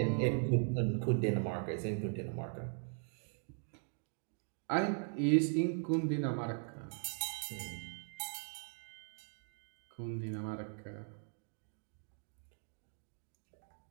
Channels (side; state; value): left; silent; 51 dB below the other